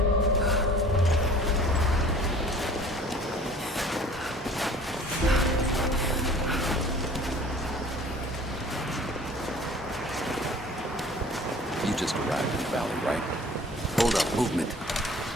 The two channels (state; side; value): normal; both; correlation 0.48